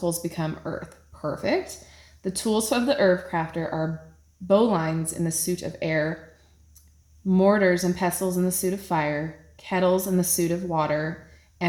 become earth. Perfect. The tools of the Herbcrafter are bowlines in the suit of air, mortars and pestles in the suit of fire, kettles in the suit of water,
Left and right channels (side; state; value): both; identical; correlation 1.00